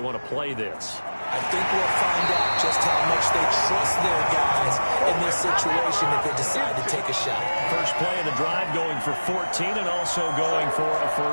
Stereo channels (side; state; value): both; inverted; correlation -1.00